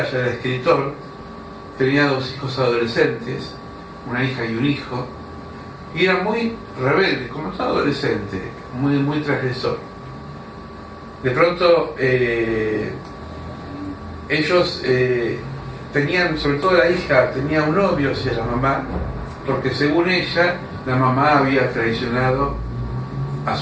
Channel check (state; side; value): identical; both; correlation 1.00